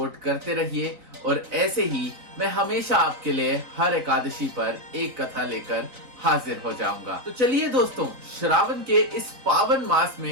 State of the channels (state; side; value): late; left; 3.9 ms